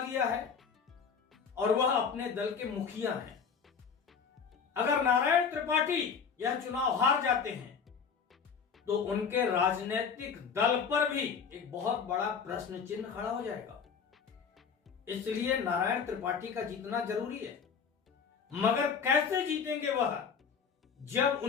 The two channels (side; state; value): right; quieter; 6.3 dB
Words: है और वह अपने दल के मुखिया हैं। अगर नारायण त्रिपाठी यह चुनाव हार जाते हैं तो उनके राजनीतिक दल पर भी एक बहुत बड़ा प्रश्न चिन्ह खड़ा हो जाएगा। इसलिए नारायण त्रिपाठी का जीतना जरूरी है। मगर कैसे जीतेंगे वह, जब